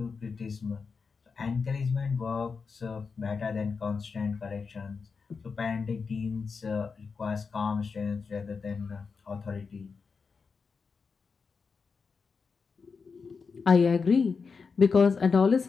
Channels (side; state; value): right; quieter; 5.1 dB